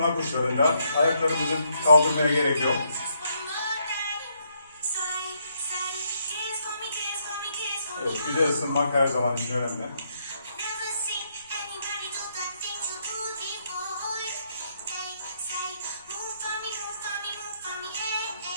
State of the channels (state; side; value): inverted; both; correlation -0.74